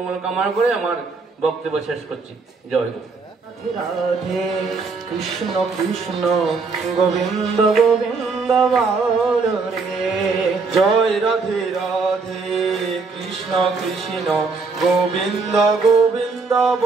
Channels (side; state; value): left; quieter; 4.4 dB